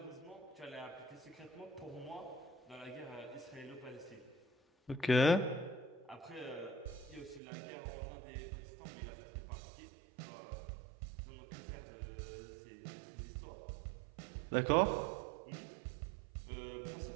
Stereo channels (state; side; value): drops out; left; at 7.4 s